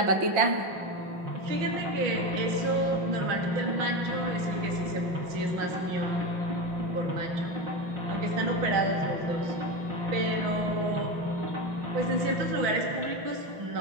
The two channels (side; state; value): left; late; 5.6 ms